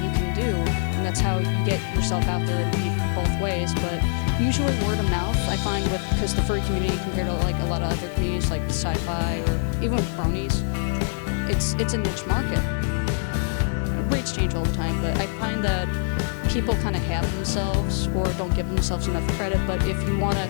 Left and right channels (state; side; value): silent; right; 62 dB below the other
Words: you can do, and that's how you get yourself out there. It'd be both ways, but usually word of mouth. I find because the furry community compared to like a lot of other communities like sci-fi or even with bronies, it's a niche market. Rates change all the time, but I find that people kind of have themselves or don't give themselves enough credit. But if you want to